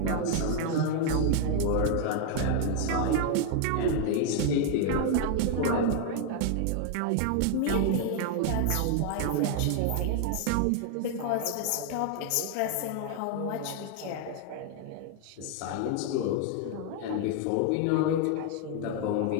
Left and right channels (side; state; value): both; different; correlation 0.00